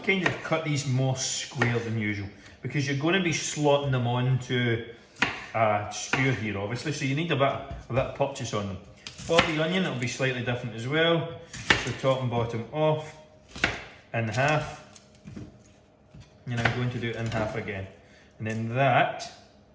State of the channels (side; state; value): both; identical; correlation 1.00